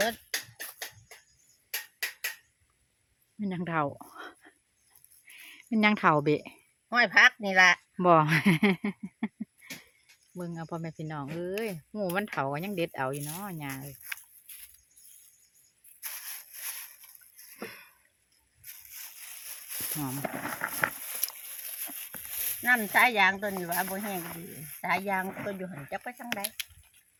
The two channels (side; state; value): both; identical; correlation 1.00